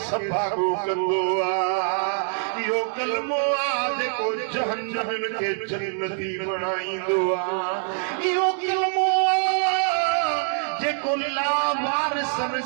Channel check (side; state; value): left; silent; 56 dB below the other